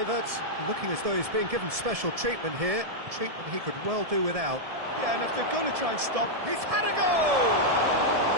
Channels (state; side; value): late; left; 1.7 ms